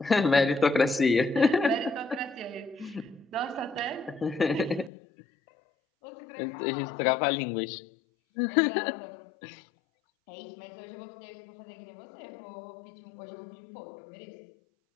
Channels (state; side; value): drops out; right; at 4.9 s